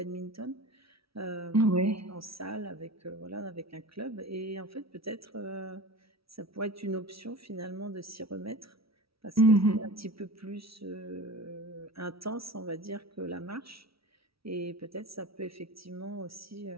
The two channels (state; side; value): late; left; 0.75 ms